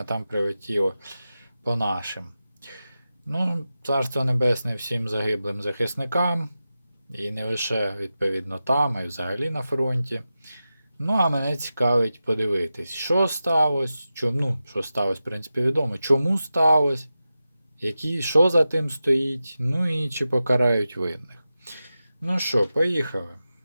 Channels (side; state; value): both; inverted; correlation -0.92